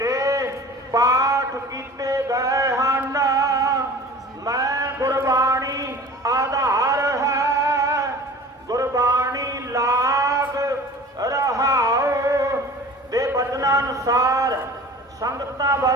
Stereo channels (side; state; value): both; normal; correlation 0.42